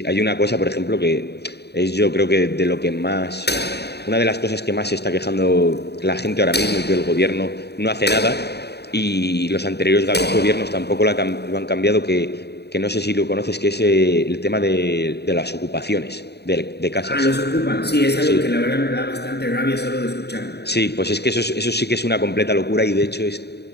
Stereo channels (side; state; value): right; late; 0.48 ms